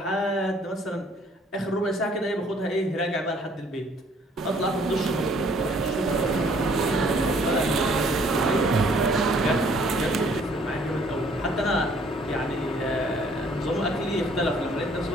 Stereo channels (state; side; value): normal; both; correlation 0.60